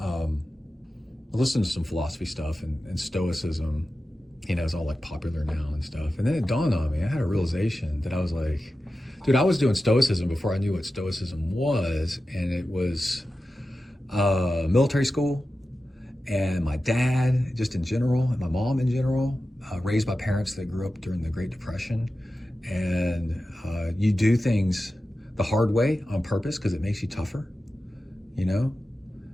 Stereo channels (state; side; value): normal; both; correlation 0.93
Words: I listened to some philosophy stuff, and Stoicism, is all like popular now and stuff. And then it dawned on me, I had a realization that I was like, dude, I was doing Stoicism before I knew what Stoicism was, and it was military school, and my dad, just in general, and my mom in general, raised by parents that grew up during the Great Depression. And you do things the hard way on purpose because it makes you tougher,